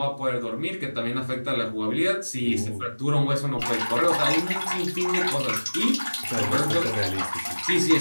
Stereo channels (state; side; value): inverted; both; correlation -1.00